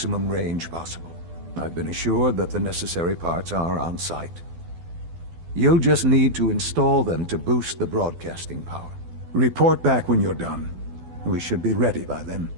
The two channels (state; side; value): late; left; 12 ms